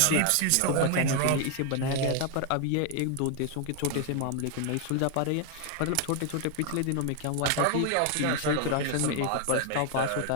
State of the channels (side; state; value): both; different; correlation 0.00